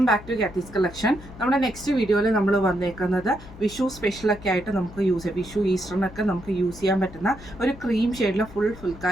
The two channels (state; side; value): noise; left; hum, 17 dB below the sound